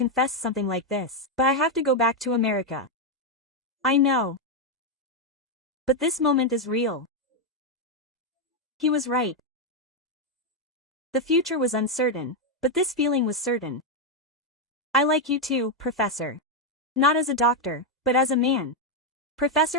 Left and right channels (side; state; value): both; normal; correlation 0.02